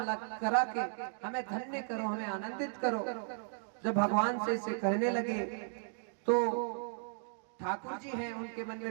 करा के हमें धन्य करो, हमें आनंदित करो। जब भगवान से इसे कहने लगे तो ठाकुर जी हैं, उनके मन में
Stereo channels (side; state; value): left; silent; digital silence